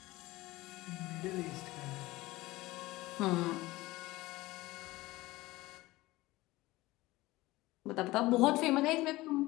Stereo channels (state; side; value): quieter; right; 19.2 dB